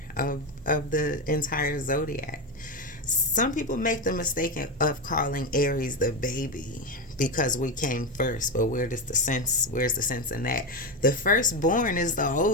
of the entire zodiac. Some people make the mistake of calling Aries the baby because we came first, but where's the sense in that? The firstborn is the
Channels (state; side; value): normal; both; correlation 0.13